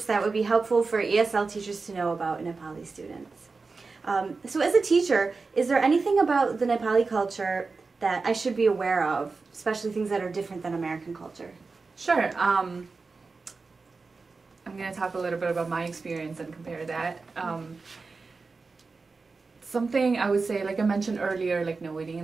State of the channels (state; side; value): quieter; left; 4.2 dB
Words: that would be helpful for ESL teachers to know about Nepali students. So as a teacher, is there anything about the Nepali culture that I should be aware of, especially things that are different than American culture? Sure. I'm going to talk a little bit about my experience and compare that. Something I would say, like I mentioned earlier, like no waiting